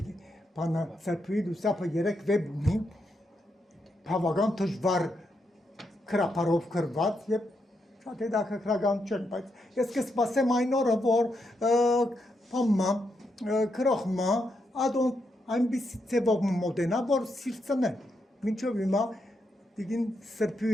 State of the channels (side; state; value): both; normal; correlation 0.82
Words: Բանը սրբույի դուսապը 3 վեբ ունի, բավական դժվար քրապարով գրված եւ շատ հետաքրքրական չէ, բայց ես կսպասեմ այն օրը, որ բամը քրոխմա ադոն այնպիսի ձևով մոդենա, որ սիրծնե։ Մինչև հիմա դիգին